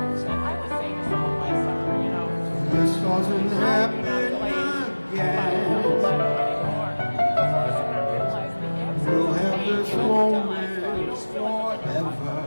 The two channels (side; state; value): both; inverted; correlation -1.00